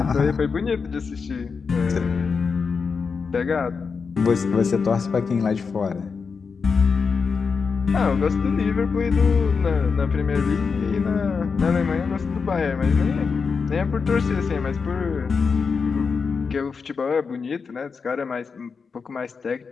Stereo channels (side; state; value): right; quieter; 5.3 dB